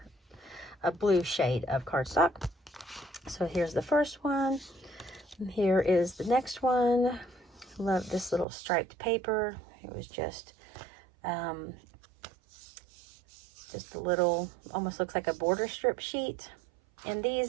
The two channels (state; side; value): drops out; left; at 8.5 s